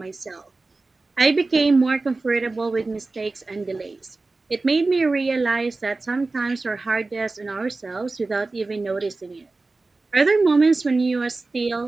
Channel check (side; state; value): left; quieter; 3.5 dB